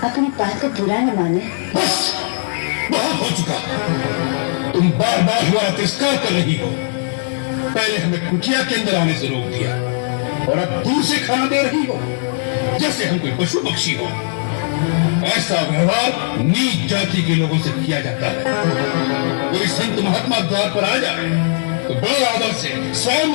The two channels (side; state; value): right; silent; 67 dB below the other